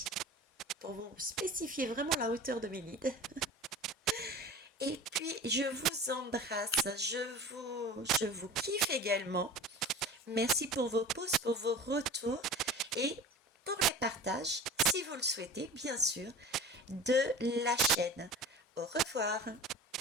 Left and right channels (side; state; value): both; normal; correlation 0.37